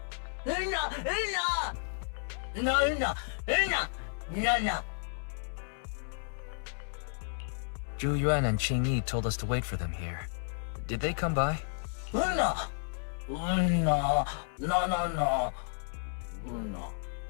Zhu Yuan and Qing Yi told us to wait for them here. Did they come by?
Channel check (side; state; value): right; silent; digital silence